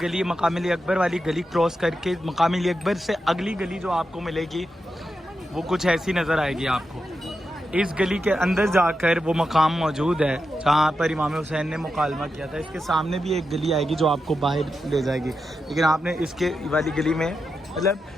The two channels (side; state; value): both; normal; correlation 0.88